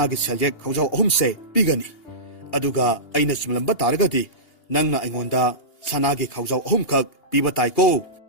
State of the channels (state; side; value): late; right; 2.8 ms